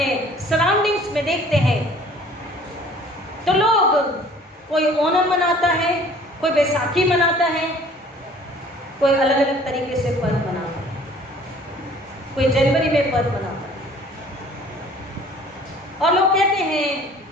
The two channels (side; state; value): both; normal; correlation 0.52